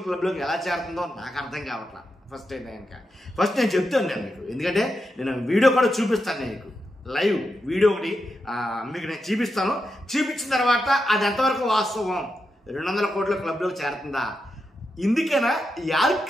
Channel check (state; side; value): normal; both; correlation 0.87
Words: క్లబ్లోకి ఎలా చేరుతుందో నాకు అర్థం కావట్లా. ఫస్ట్ అయితే కనుక నేను చెప్తాను నేను మీకు, ఎందుకంటే నేను వీడియో కూడా చూపిస్తాను. నేను మీకు లైవ్ వీడియో ఒకటి మీకు నేను చూపిస్తాను. చూపించిన తర్వాత అది ఎంతవరకు వాస్తవం, 200 కోట్ల క్లబ్లోకి చేరుతుందా, ఇందుకైనా యార్క్